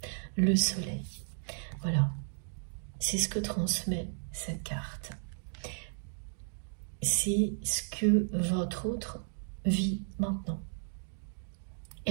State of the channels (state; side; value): silent; left; digital silence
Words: le soleil. Voilà, c'est ce que transmet cette carte. C'est ce que votre autre vit maintenant.